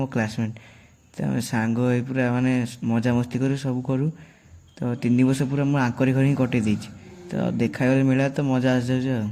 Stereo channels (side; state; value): both; identical; correlation 1.00